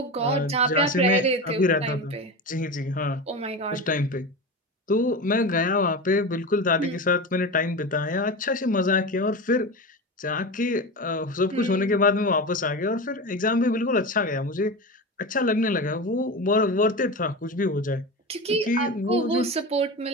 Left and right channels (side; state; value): both; normal; correlation 0.25